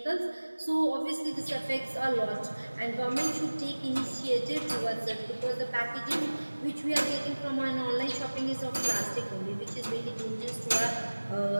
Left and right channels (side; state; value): both; inverted; correlation -1.00